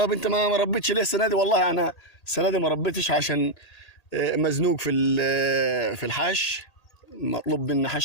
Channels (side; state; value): right; late; 1.8 ms